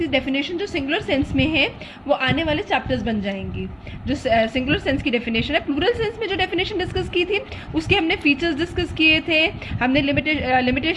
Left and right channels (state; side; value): identical; both; correlation 1.00